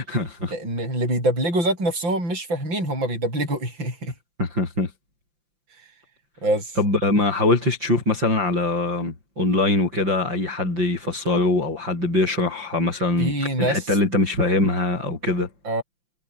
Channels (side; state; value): left; late; 5.8 ms